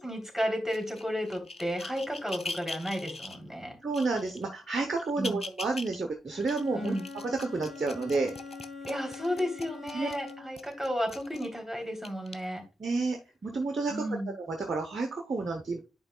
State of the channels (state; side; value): normal; both; correlation 0.86